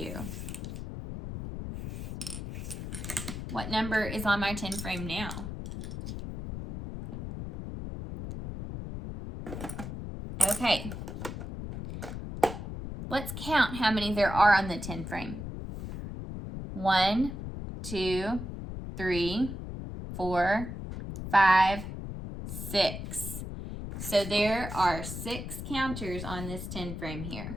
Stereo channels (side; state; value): left; noise; rumble, 7 dB below the sound